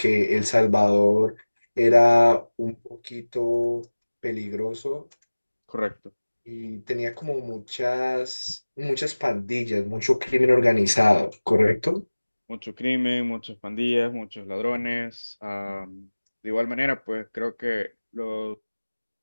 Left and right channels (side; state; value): both; inverted; correlation -1.00